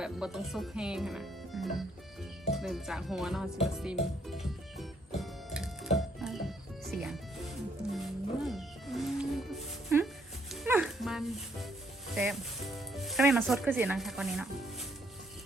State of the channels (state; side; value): normal; both; correlation 0.70